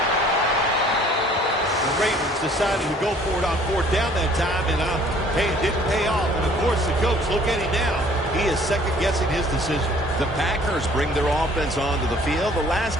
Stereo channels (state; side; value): normal; both; correlation 0.56